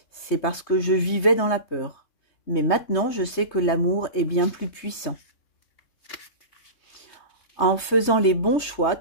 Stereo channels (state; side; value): late; right; 3.2 ms